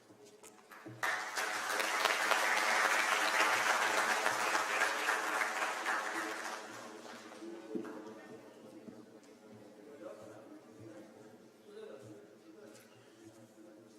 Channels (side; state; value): both; identical; correlation 1.00